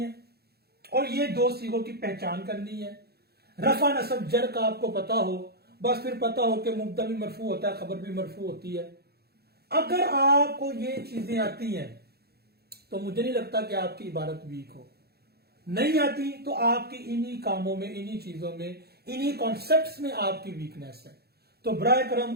और ये दो सीगों की पहचान करनी है। रफा नसब जर का आपको पता हो, बस फिर पता हो कि मुब्तदा भी मरफू होता है, खबर भी मरफू होती है। अगर आपको ये चीजें आती हैं तो मुझे नहीं लगता कि आपकी इबारत वीक हो। नहीं आती तो आपकी इन्हीं कामों में, इन्हीं चीजों में, इन्हीं कॉन्सेप्ट्स में आपकी वीकनेस है। तो बराए करम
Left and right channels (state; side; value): late; left; 0.46 ms